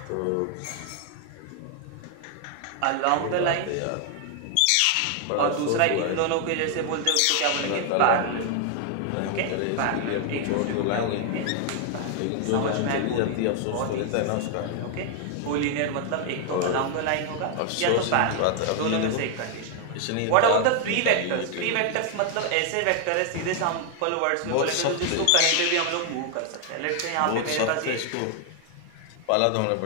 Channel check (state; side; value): different; both; correlation 0.00